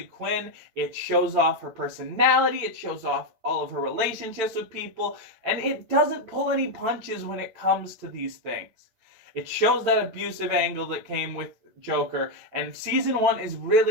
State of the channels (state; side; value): late; left; 9.0 ms